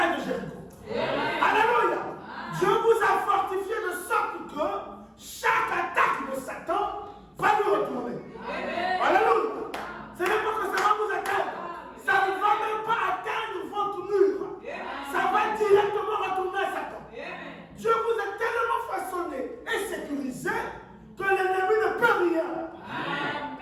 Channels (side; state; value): both; identical; correlation 1.00